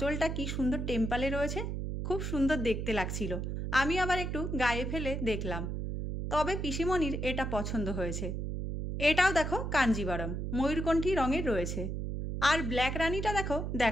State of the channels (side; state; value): right; noise; hum, 3 dB below the sound